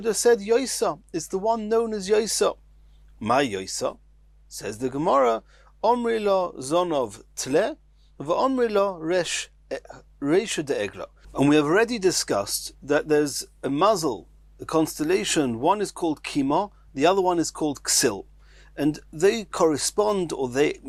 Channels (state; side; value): identical; both; correlation 1.00